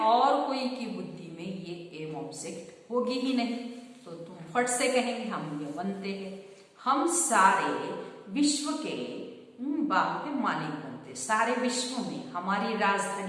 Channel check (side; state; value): both; identical; correlation 1.00